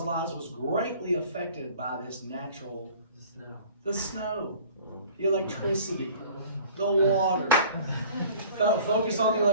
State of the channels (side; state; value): both; inverted; correlation -0.47